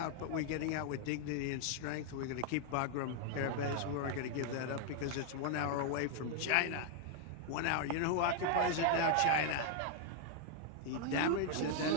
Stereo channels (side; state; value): both; different; correlation 0.00